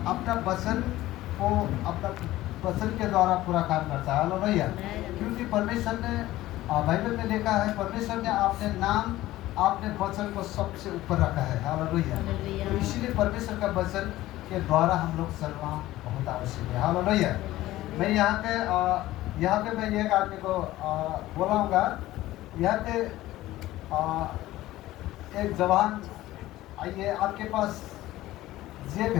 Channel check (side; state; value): right; quieter; 16.0 dB